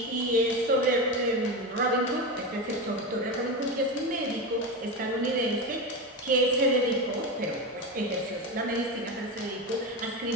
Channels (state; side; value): normal; both; correlation 0.19